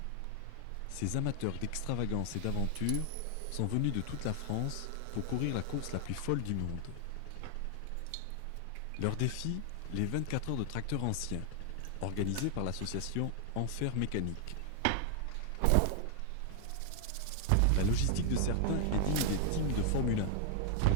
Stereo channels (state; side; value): different; both; correlation 0.00